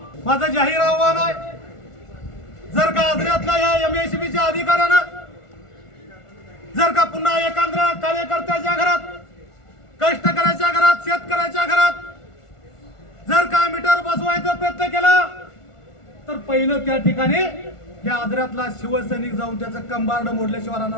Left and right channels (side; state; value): right; late; 1.4 ms